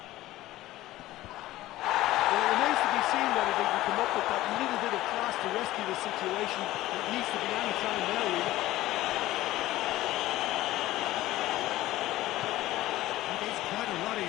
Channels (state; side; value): quieter; right; 16.1 dB